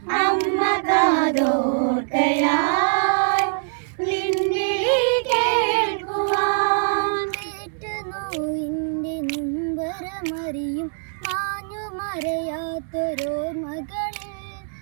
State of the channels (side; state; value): left; silent; 63 dB below the other